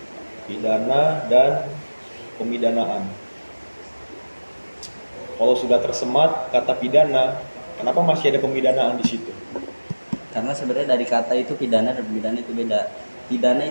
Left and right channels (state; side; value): inverted; both; correlation -1.00